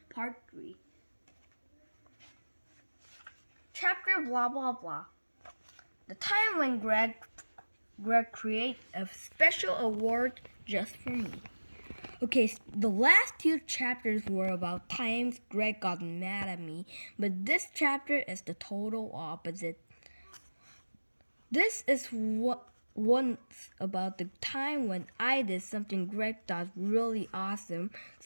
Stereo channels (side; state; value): both; inverted; correlation -1.00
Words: Part 3. Chapter blah blah blah. The time when Greg created a special award just for me. Okay, the last two chapters were about times Greg got mad at me, but this chapter is the total opposite. This is what once about the time when I did something Greg thought really awesome,